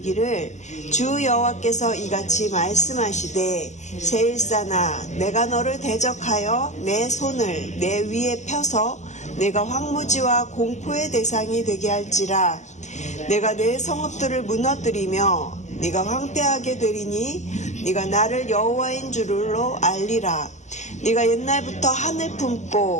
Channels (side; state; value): right; late; 0.34 ms